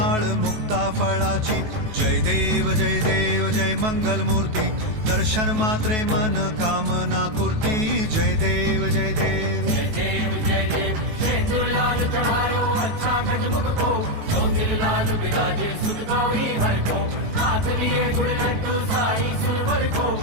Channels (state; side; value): late; left; 19 ms